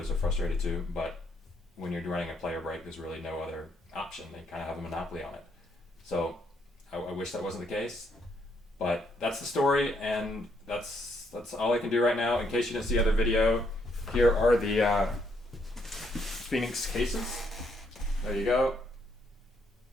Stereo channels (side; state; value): both; normal; correlation 0.73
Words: are frustrated too, but when you're running a player break, there's really no other option. They kind of have a monopoly on it. So I wish that wasn't the case, but that's the story, and that's all I can do right now. In case you didn't see the other video, here are the Phoenix cases. There you go.